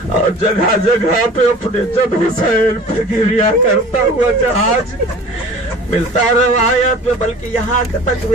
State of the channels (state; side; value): normal; both; correlation 0.43